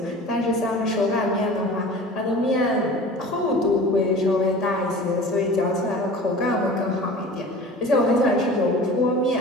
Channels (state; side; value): normal; both; correlation 0.40